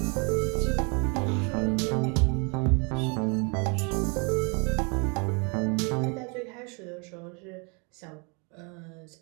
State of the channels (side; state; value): left; quieter; 33.4 dB